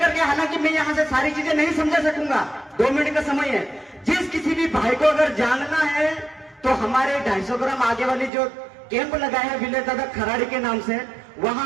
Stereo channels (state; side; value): drops out; left; at 8.3 s